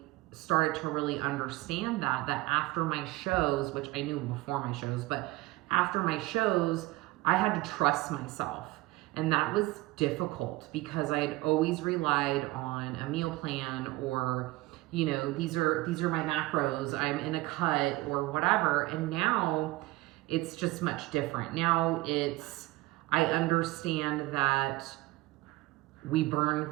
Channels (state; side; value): quieter; left; 19.9 dB